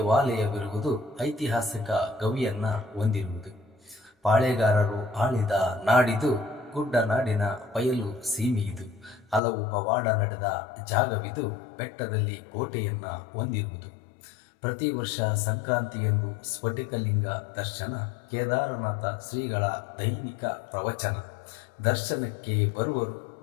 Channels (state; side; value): drops out; right; at 9.4 s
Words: ಐತಿಹಾಸಿಕ ಗವಿಯನ್ನು ಹೊಂದಿರುವುದು. ಪಾಳೆಗಾರರು ಆಳಿದ ನಾಡಿದು. ಗುಡ್ಡನಾಡಿನ ಬಯಲು ಸೀಮೆಯಿದು. ಹಲವು ಪವಾಡ ನಡೆದ ಜಾಗವಿದು. ಬೆಟ್ಟದಲ್ಲಿ ಕೋಟೆಯನ್ನು ಹೊಂದಿರುವುದು. ಪ್ರತಿ ವರ್ಷ ಸಂಕ್ರಾಂತಿಯಂದು ಸ್ಫಟಿಕಲಿಂಗ ದರ್ಶನ. ಕೇದಾರನಾಥ ಶ್ರೀಗಳ ದೈನಿಕ ಪ್ರವಚನ. ದರ್ಶನಕ್ಕೆ ಬರುವರು